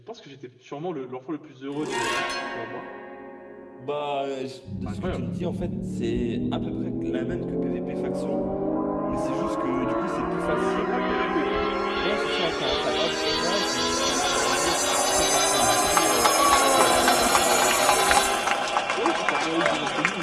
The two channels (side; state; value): both; identical; correlation 1.00